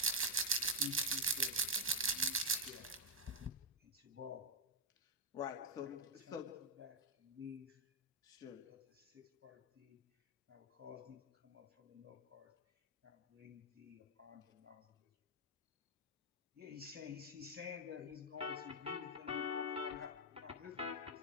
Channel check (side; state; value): both; normal; correlation -0.03